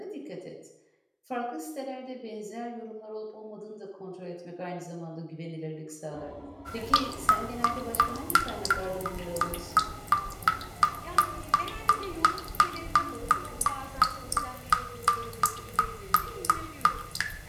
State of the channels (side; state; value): both; identical; correlation 1.00